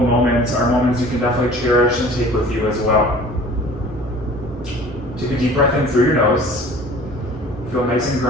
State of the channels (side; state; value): both; normal; correlation 0.47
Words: moments are moments you can definitely cherish and take with you as well. Take a deep breath in through your nose. Feel nice and